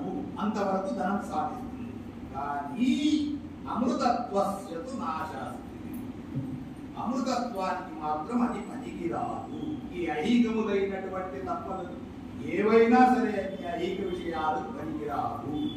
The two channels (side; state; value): both; identical; correlation 1.00